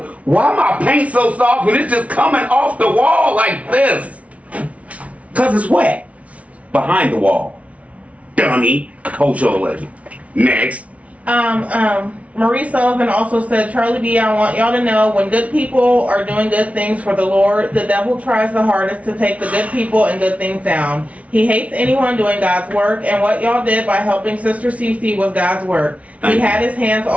why my paint so soft and it's just coming off the wall like this. Cause it's wet behind the wall. Dummy. Hold your legend. Next. Marie Sullivan also said, Charlie B, I want y'all to know when good people are doing good things for the Lord, the devil tries the hardest to take the good people and good things down. He hates anyone doing God's work, and what y'all did by helping Sister Cece was God's work. He had his hands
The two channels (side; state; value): left; late; 0.065 ms